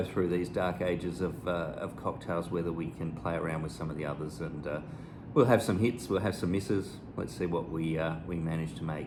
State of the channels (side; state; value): both; identical; correlation 1.00